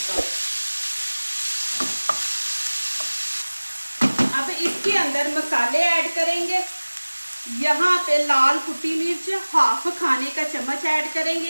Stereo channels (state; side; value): inverted; both; correlation -1.00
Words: अब इसके अंदर मसाले ऐड करेंगे। यहाँ पे लाल कुटी मिर्च हाफ खाने का चम्मच ऐड करेंगे,